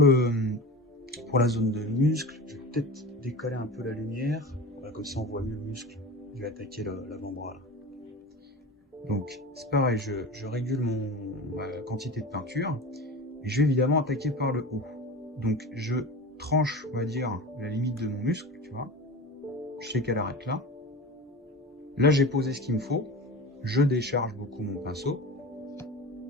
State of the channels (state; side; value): normal; both; correlation 0.31